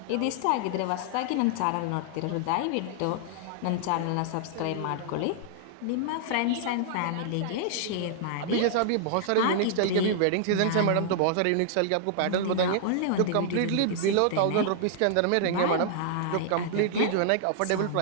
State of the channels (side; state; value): both; different; correlation -0.01